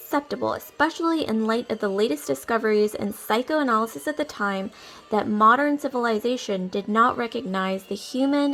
especially in light of the latest discoveries in psychoanalysis at the time, that modern civilization did not recognize the human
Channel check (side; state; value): both; identical; correlation 1.00